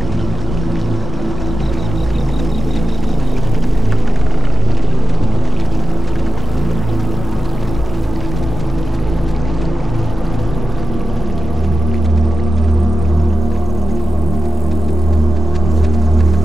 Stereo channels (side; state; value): both; normal; correlation 0.87